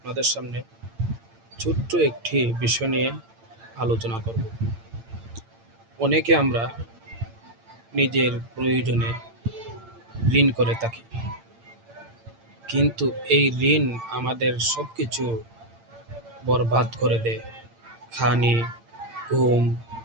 সামনে ছোট্ট একটি বিষয় নিয়ে আলোচনা করব। অনেকে আমরা নিজের প্রয়োজনে ঋণ করে থাকি, কিন্তু এই ঋণ আমাদের সব কিছু বরবাদ করে দেয়। খানি, ঘুম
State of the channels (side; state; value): left; late; 8.8 ms